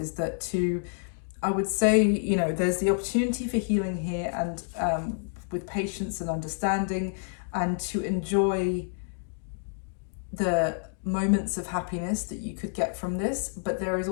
that I would say, you know, there's the opportunity for healing here, and with patience and understanding, and to enjoy the moments of happiness that you could get from this. But there is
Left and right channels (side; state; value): right; silent; digital silence